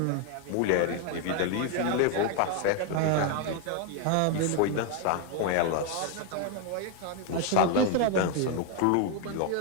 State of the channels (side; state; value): both; different; correlation 0.01